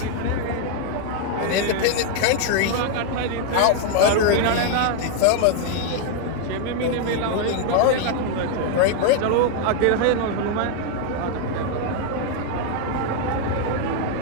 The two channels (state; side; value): different; both; correlation 0.00